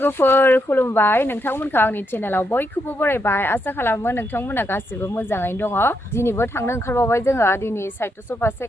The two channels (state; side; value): normal; both; correlation 0.80